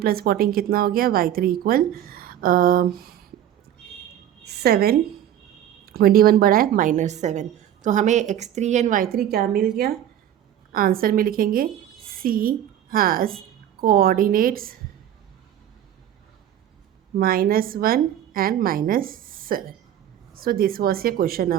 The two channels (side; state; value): left; quieter; 11.0 dB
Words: plus 14 कितना हो गया, y3 इक्वल 7, 21 बड़ा है -7. तो हमें x3 एंड y3 क्या मिल गया, आंसर में लिखेंगे C has coordinates -1 and -7. So this was your question